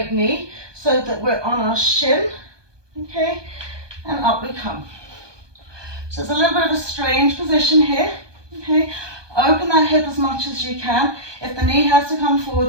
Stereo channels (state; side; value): late; left; 1.2 ms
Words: knee so that we're on our shin, okay, and up we come. So it's a little bit of a strange position here, okay. Open that hip as much as you can. If the knee has to come